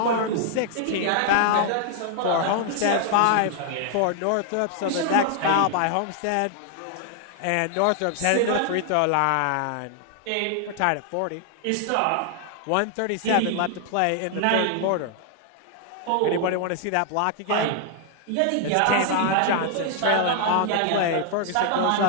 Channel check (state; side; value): different; both; correlation 0.00